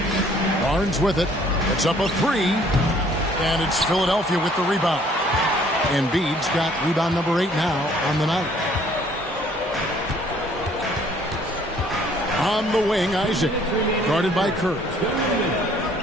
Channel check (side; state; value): both; normal; correlation 0.59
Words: Barnes with it. It's up a 3. And it's Philadelphia with the rebound. Embiid's got rebound number 8 now on the night. On the wing, Isaac, guarded by Kirk.